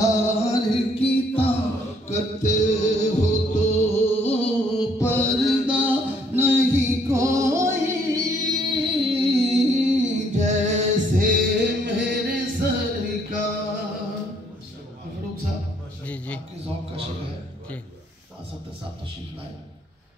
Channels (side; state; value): both; normal; correlation 0.66